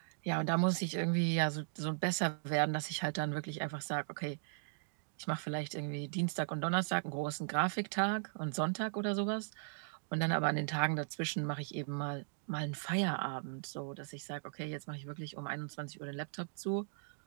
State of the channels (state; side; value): silent; left; digital silence